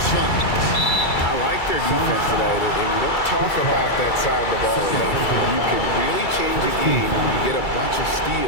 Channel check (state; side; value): late; right; 2.3 ms